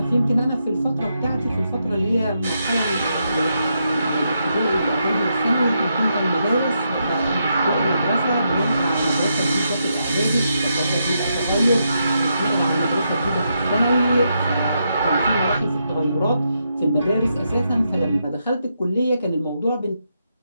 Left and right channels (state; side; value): inverted; both; correlation -0.82